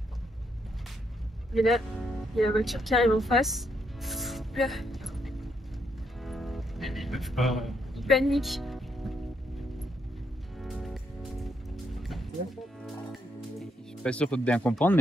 Et là, il y a la voiture qui arrive en face. Là. Ils peuvent pas. Ils paniquent. Je suis pas sûr de bien comprendre,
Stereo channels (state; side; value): normal; both; correlation 0.76